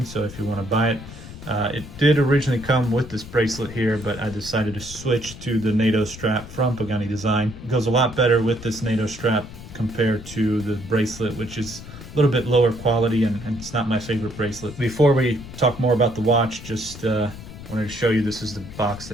so if you want to buy it. It did originally come with this bracelet here, but I decided to switch to the NATO strap from Pagani Design. It goes a lot better with this NATO strap compared to the bracelet, which is a little bit lower quality, and it's not my favorite bracelet. Before we talk more about the watch, just wanted to show you, this is the box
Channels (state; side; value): noise; left; rumble, 14 dB below the sound